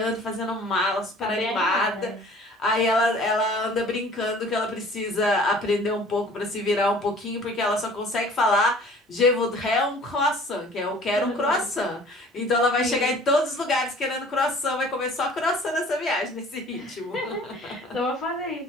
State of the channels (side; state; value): both; normal; correlation 0.49